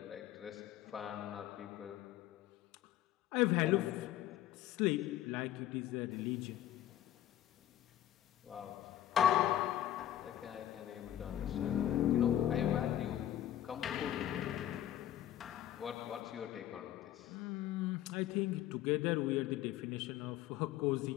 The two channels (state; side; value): quieter; right; 12.4 dB